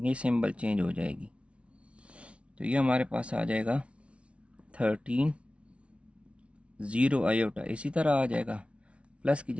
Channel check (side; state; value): left; late; 0.061 ms